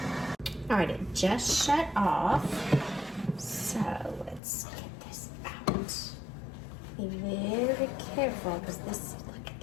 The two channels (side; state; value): right; drops out; at 4.4 s